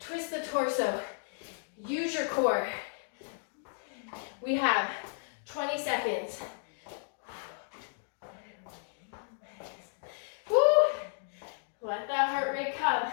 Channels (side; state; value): right; silent; digital silence